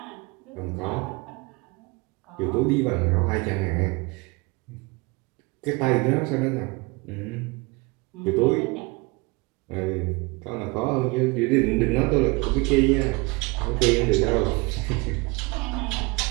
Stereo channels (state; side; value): quieter; left; 26.3 dB